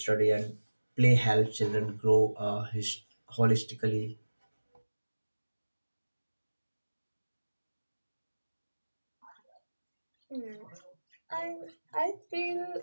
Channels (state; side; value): inverted; both; correlation -1.00